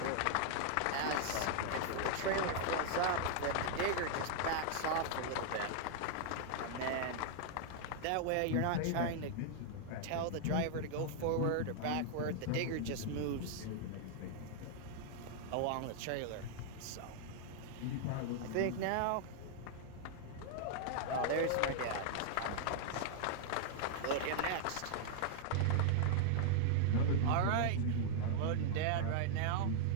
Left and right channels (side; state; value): both; different; correlation -0.01